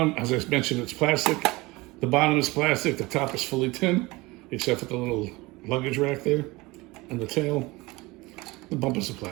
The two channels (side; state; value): left; quieter; 22.2 dB